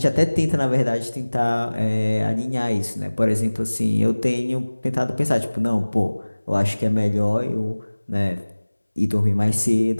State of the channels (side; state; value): both; inverted; correlation -1.00